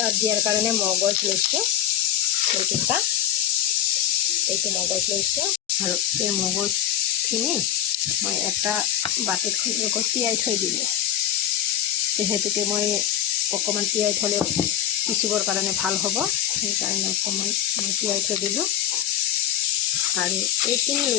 দিয়াৰ কাৰণে মগজ লৈছোঁ, এইটো মগজ লৈছোঁ আৰু এই মগজখিনি মই এটা বাতিত তিয়াই থৈ দিলোঁ। যিহেতুকে মই অকণমান তিয়াই থ'লে পিচিবৰ কাৰণে ভাল হ'ব, সেইকাৰণে অকণমান মই তিয়াই থৈ দিলোঁ। আৰু এইখিনি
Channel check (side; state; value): right; quieter; 10.4 dB